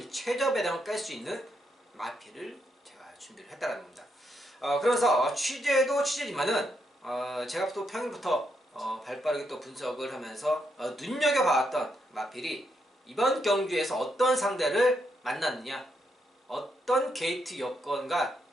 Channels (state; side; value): normal; both; correlation 0.79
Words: 최저 배당을 깰 수 있는 마필을 제가 준비를 했다는 겁니다. 그래서 취재도 취재지만은 제가 또 평일부터 발빠르게 또 분석을 하면서 눈여겨봤던 마필이 이번 경주에서 어떤 상대를 만났느냐, 어떤 게이트 여건과